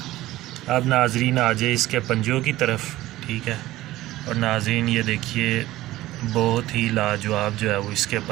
اب ناظرین آ جائے اس کے پنجوں کی طرف، ٹھیک ہے۔ اور ناظرین یہ دیکھیے بہت ہی لاجواب جو ہے وہ اس کے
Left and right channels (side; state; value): left; quieter; 16.4 dB